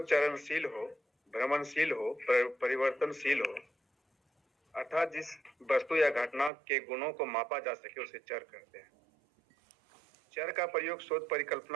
चरणशील हो, भ्रमणशील हो, परिवर्तनशील हो, अर्थात जिस वस्तु या घटना के गुणों को मापा जा सके उसे चर कहते हैं। चर का प्रयोग शोध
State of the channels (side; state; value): left; drops out; at 6.5 s